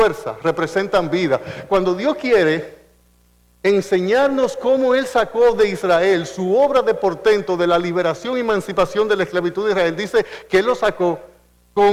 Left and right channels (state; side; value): identical; both; correlation 1.00